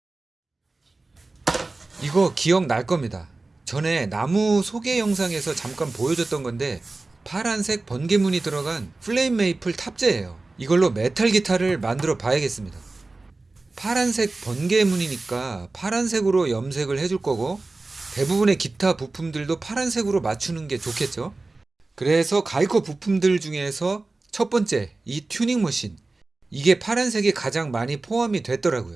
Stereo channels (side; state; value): left; quieter; 3.3 dB